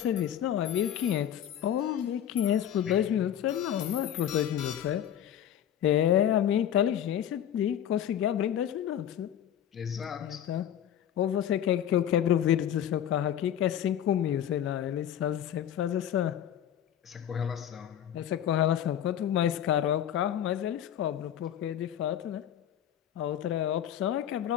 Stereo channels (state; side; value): quieter; right; 10.3 dB